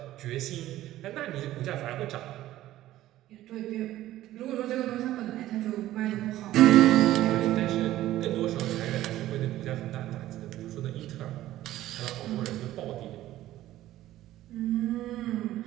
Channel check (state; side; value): quieter; left; 14.5 dB